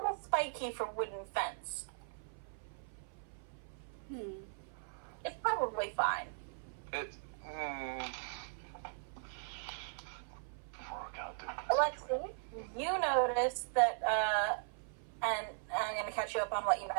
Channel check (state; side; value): silent; left; 52 dB below the other